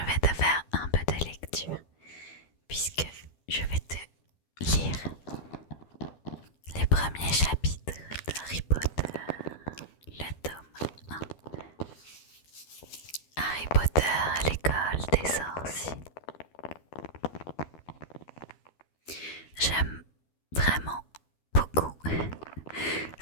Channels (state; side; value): late; right; 12 ms